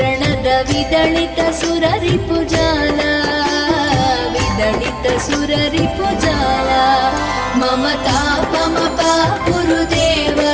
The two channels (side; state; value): both; identical; correlation 1.00